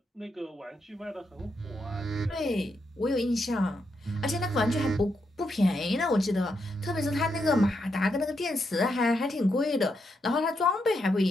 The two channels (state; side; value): normal; both; correlation 0.81